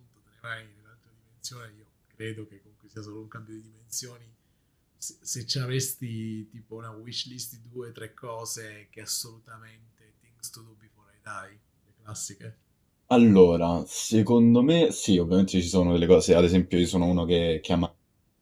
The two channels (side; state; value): both; identical; correlation 1.00